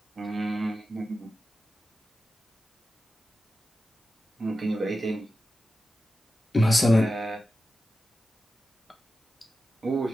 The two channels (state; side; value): normal; both; correlation 0.92